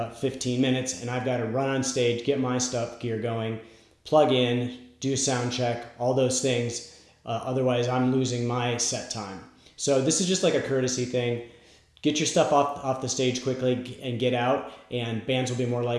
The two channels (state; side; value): identical; both; correlation 1.00